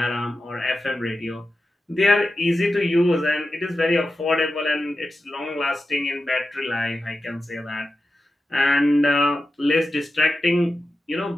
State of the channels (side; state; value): both; normal; correlation 0.92